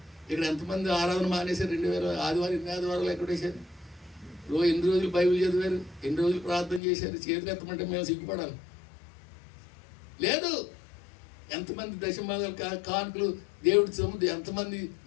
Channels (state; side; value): drops out; right; at 6.8 s